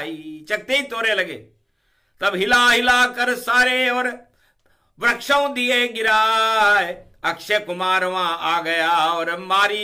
चखते ही तोरे लगे, तब हिला हिला कर सारे और वृक्षों दिए गिराए। अक्षय कुमार वहां आ गया और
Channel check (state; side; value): identical; both; correlation 1.00